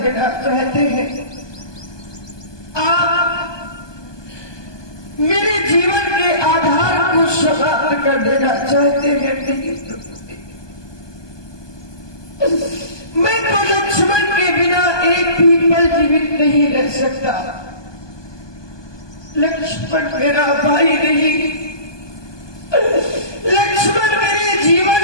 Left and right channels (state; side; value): late; right; 1.2 ms